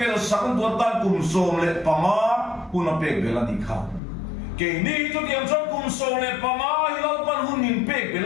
sakun tu tan kum som le pama puna pek bela ni kha ke ni tu diam chuan kum som le pama hilal pan hunin pek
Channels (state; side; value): drops out; right; at 4.0 s